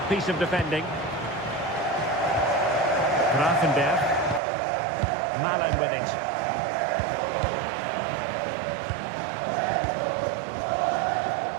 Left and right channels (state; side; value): drops out; left; at 4.4 s